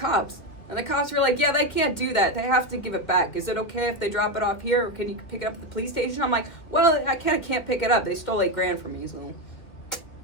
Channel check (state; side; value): late; right; 2.2 ms